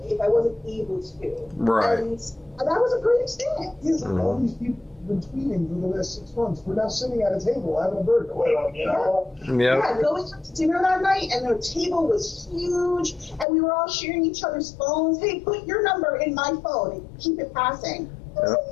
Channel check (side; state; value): right; drops out; at 13.5 s